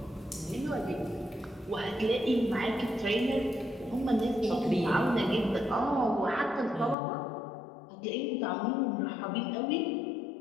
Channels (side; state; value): right; drops out; at 7.0 s